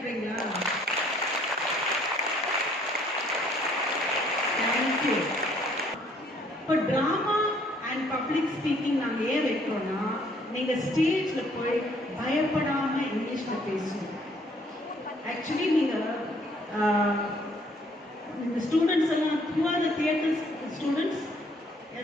தேங்க்யூ. இப்போ டிராமா அண்ட் பப்ளிக் ஸ்பீக்கிங் நாங்கள் ஏன் வைக்கிறோம்னா, நீங்கள் ஸ்டேஜில் போய் பயப்படாமல் இங்கிலீஷில் பேசணும். ஆக்சுவலி நீங்கள் இந்த ஸ்டூடெண்ட்ஸ் எல்லாம் who are the theatre students?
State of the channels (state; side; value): normal; both; correlation 0.62